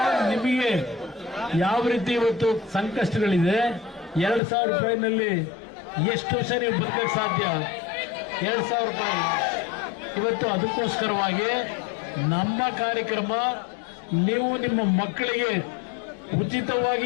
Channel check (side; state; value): right; drops out; at 4.4 s